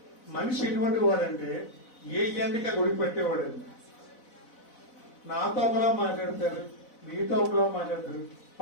మనిషి ఎటువంటి వాడంటే ఏ ఎండిక గుడి పెట్టేవాడండి. నాతో ఒకలా మాట్లాడతారు, మీతో ఒకలా మాట్లాడతారు,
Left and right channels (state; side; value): late; right; 4.0 ms